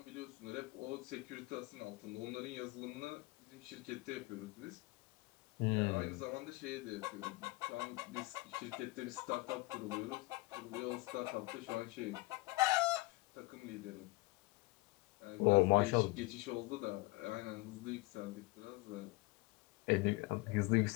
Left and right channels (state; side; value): quieter; right; 22.6 dB